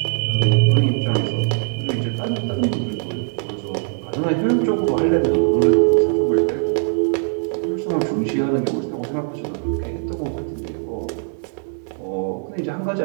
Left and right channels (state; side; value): silent; left; 57 dB below the other